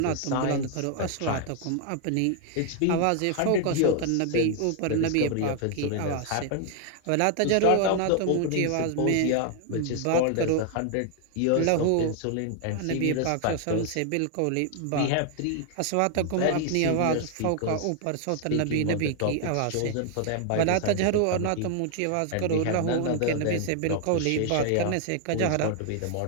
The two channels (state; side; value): different; both; correlation 0.00